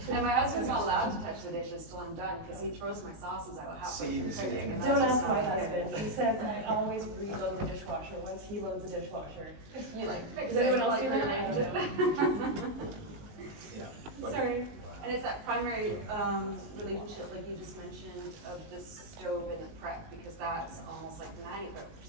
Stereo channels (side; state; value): left; late; 19 ms